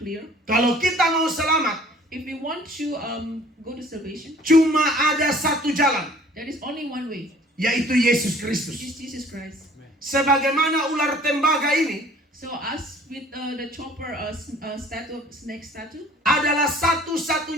Kalau kita mau selamat, If we want to go to salvation, cuma ada satu jalan, there is only one way, yaitu Yesus which Kristus. is Jesus Christ. Sebagaimana ular tembaga ini So us with the chopper snake statue, adalah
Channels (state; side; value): normal; both; correlation 0.53